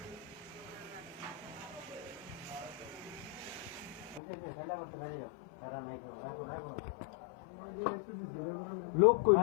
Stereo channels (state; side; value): drops out; right; at 4.2 s